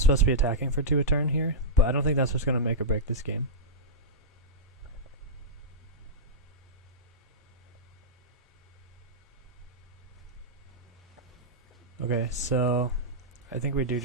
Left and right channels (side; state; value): both; normal; correlation -0.09